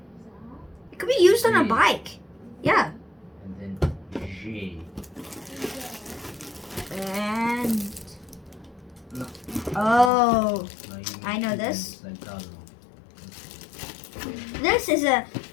it could be used on a bike. Yeah. And oh, I know this. This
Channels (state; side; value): drops out; right; at 10.1 s